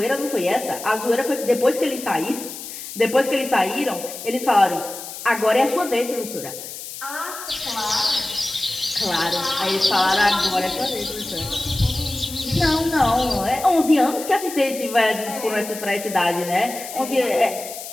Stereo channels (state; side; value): noise; left; hiss, 11 dB below the sound